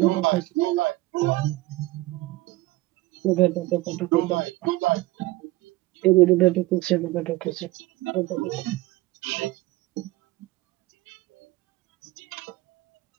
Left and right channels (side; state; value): left; quieter; 19.2 dB